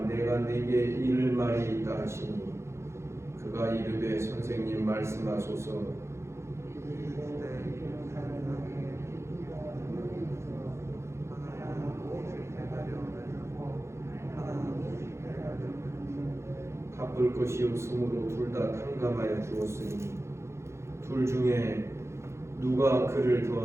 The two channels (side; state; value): left; late; 0.13 ms